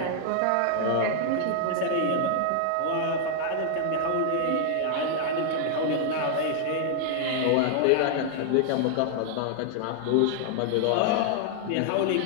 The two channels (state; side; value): different; both; correlation 0.00